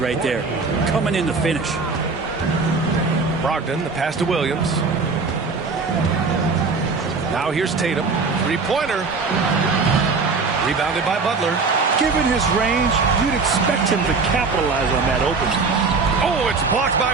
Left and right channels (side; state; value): left; quieter; 4.4 dB